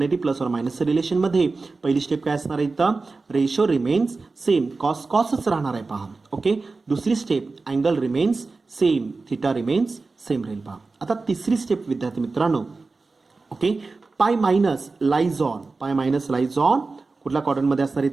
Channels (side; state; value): left; quieter; 3.9 dB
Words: + or -चं रिलेशन मध्ये पहिली स्टेप काय असणार आहे इथं रेशो रिमेन्स सेम. कॉसच राहणार आहे पहा. ओके, दुसरी step angle remains same. Theta remains same राहील पहा. आता तिसरी स्टेप विद्यार्थी मित्रांनो ओके π- लाईज ऑन कुठल्या क्वाड्रंटमध्ये असणार